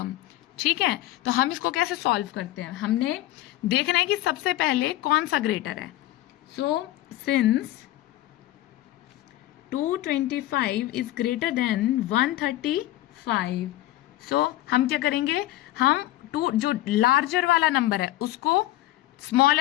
ठीक है, तो हम इसको कैसे सॉल्व करते हैं, हमने देखना है कि सबसे पहले कौन सा ग्रेटर है। सिंस 225 इज ग्रेटर देन 135, हम क्या करेंगे, हम जो लार्जर वाला नंबर है उसको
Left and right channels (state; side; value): quieter; right; 15.6 dB